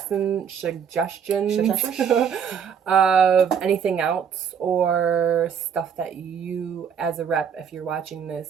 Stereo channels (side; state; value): left; quieter; 7.4 dB